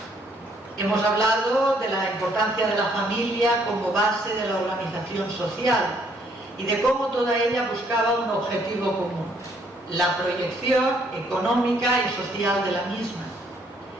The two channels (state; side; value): normal; both; correlation 0.67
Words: Hemos hablado de la importancia de la familia como base de la organización social y de cómo toda ella buscaba un objetivo común, la proyección económica y social de la misma.